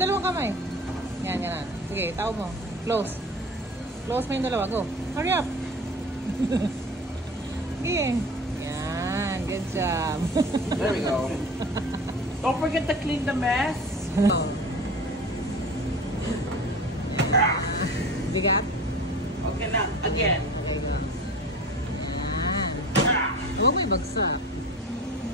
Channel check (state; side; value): normal; both; correlation 0.38